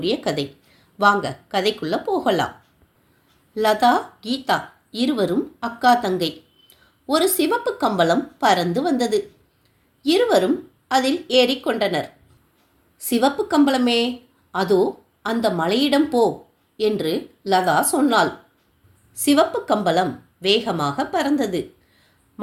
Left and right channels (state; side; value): identical; both; correlation 1.00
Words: கதை. வாங்க கதைக்குள்ள போகலாம். லதா, கீதா இருவரும் அக்கா தங்கை. ஒரு சிவப்பு கம்பளம் பறந்து வந்தது. இருவரும் அதில் ஏறிக்கொண்டனர். சிவப்பு கம்பளமே, அதோ அந்த மலையிடம் போ என்று லதா சொன்னாள். சிவப்பு கம்பளம் வேகமாக பறந்தது.